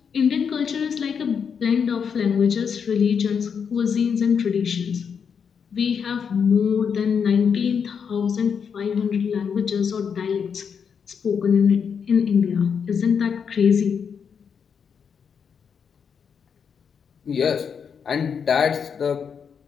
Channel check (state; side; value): quieter; right; 6.8 dB